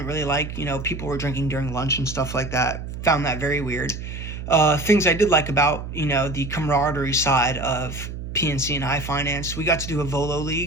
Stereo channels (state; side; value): noise; right; hum, 8 dB below the sound